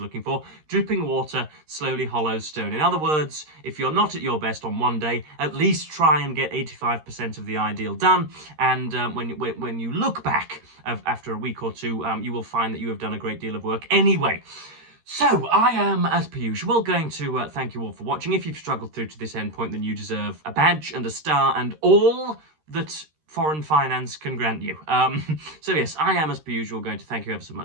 for. Dripping water slowly hollows stone. In other words, if you're not at your best on one day, at least try and get 85% of the ideal done. And when you look back after a week or two, you will find that you have done a great deal of work anyway. So, I am, as per usual, going to thank you all for watching. If you've struggled through to this end point, then you deserve a badge and a star and all that foreign finance can grant you. So yes, I am, as per usual, going to thank you ever so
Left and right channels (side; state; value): left; late; 13 ms